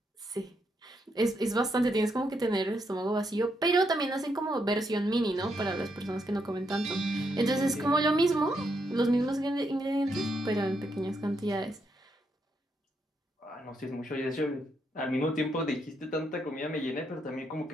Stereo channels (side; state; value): both; normal; correlation 0.79